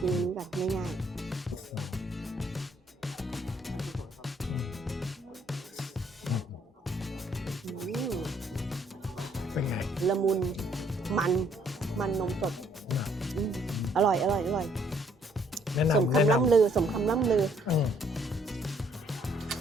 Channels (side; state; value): both; normal; correlation 0.66